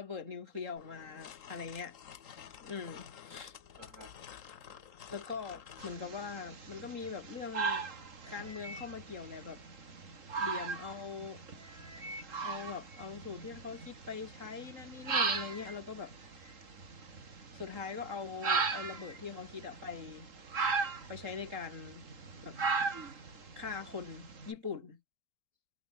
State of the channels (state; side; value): late; left; 3.8 ms